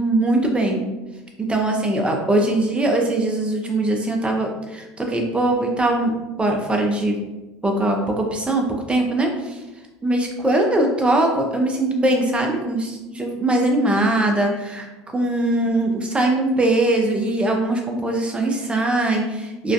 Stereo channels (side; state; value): both; normal; correlation 0.55